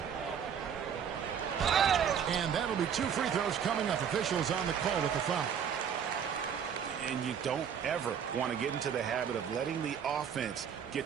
And that'll be 2 free throws coming up. Officials on the call with the foul. And you don't ever want to get into the habit of letting the offense get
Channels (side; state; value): left; quieter; 7.9 dB